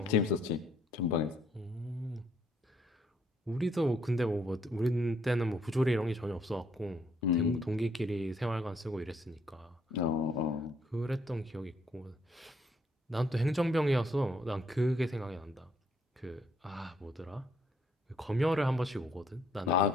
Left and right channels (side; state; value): both; normal; correlation 0.69